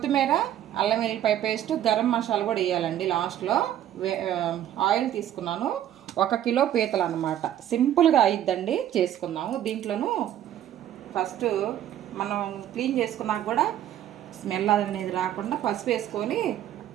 అల్లం వెల్లిపాయ పేస్ట్, గరం మసాలా కూడా వేయాలండి లాస్ట్లో. ఆయిల్ తీసుకున్నాను. 1 కిలో పీతలు అనమాట. సింపుల్గా అయిద్దండి, చేసుకుందాము. దీంట్లోనూ ఫస్ట్ మనం క్లీన్ చేసుకున్నాక కూడా స్మెల్ అనేది రాకుండా పసుపు వేసుకొని,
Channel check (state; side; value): quieter; left; 11.5 dB